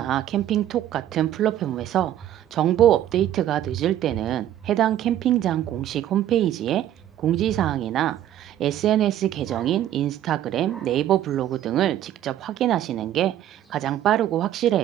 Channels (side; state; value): left; quieter; 11.9 dB